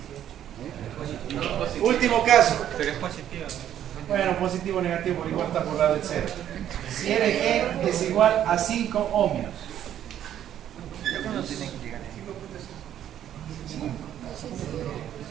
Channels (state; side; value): quieter; left; 10.8 dB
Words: Último caso. Pero es positiva. Bueno, positivo o negativo, igual está por lado del 0. Si RG es igual a 5 ohmios.